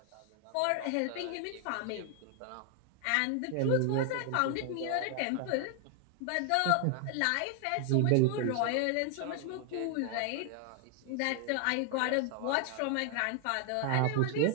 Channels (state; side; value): different; both; correlation 0.00